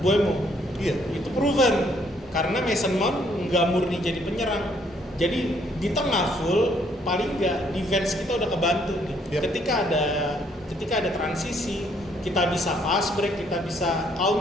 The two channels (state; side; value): normal; both; correlation 0.67